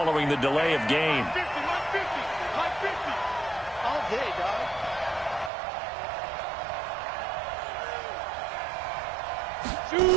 the delay of game. All day, dog.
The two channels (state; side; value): drops out; left; at 5.5 s